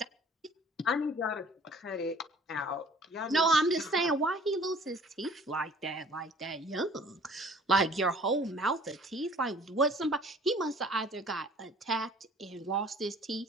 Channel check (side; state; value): both; normal; correlation 0.52